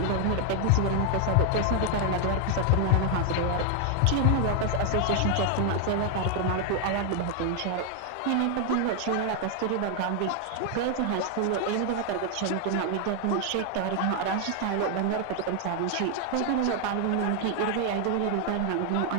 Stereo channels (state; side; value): different; both; correlation 0.00